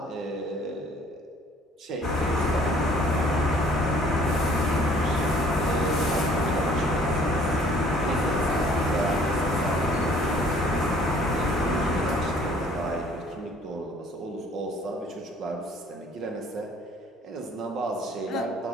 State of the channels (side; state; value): both; normal; correlation 0.57